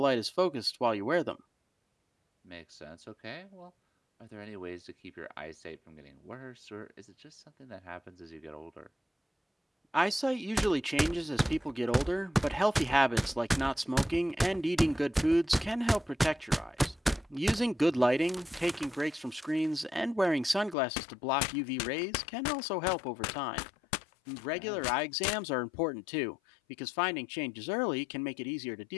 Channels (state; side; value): drops out; right; at 20.8 s